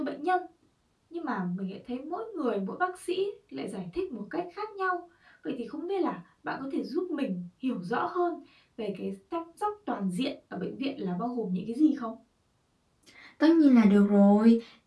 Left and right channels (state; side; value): identical; both; correlation 1.00